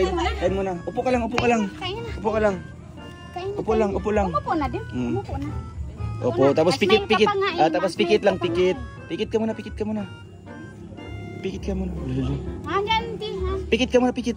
Kain muna. Upo ka lang, upo ka lang. Kain na. Upo ka lang. Kain na. Upo lang, upo lang. Umupo na din. Umupo na. Opo, tapos Mas pikit, main ka pikit. pa nga eh. Ah, tapos Mas pikit main lang, ka pa pikit. nga Pikit ka muna, pikit ka muna. Pikit ka muna. Hanggang di ha. Pikit ka muna, pikit,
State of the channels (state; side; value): identical; both; correlation 1.00